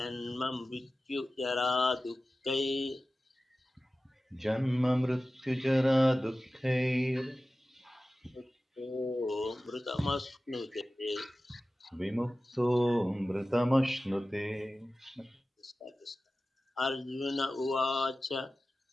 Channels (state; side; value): normal; both; correlation 0.95